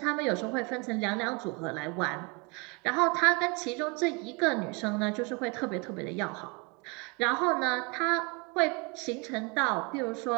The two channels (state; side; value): quieter; left; 30.2 dB